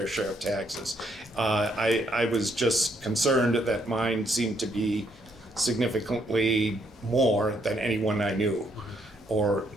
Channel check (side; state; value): both; normal; correlation 0.72